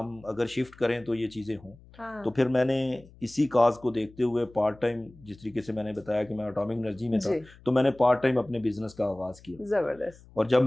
اگر شفٹ کریں تو یہ چیزیں ہوں. تو پھر میں نے اسی کاز کو دیکھتے ہوئے پارٹ ٹائم، جس طریقے سے میں نے بتایا کہ میں اٹامک انرجی میں تھا، تو میں نے پارٹ ٹائم اپنے بزنس کا آغاز کیا. زبردست. اور جب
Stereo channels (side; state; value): left; noise; hum, 24 dB below the sound